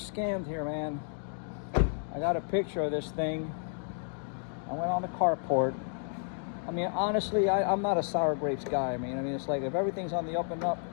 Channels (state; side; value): silent; right; 57 dB below the other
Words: here, man. I got a picture of this thing. I went on the carport. I mean, honestly, I'm not a sour grapes guy. I mean, it's like if everything's on the up and up,